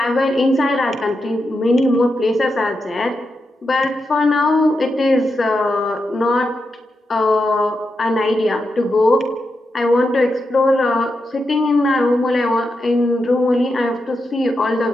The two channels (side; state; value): both; normal; correlation 0.87